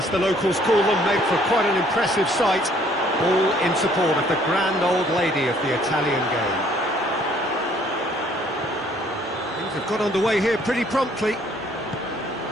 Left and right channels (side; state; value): both; normal; correlation 0.61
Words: the locals call them, make for quite an impressive sight. All in support of the grand old lady of the Italian game. Things have got underway here pretty promptly.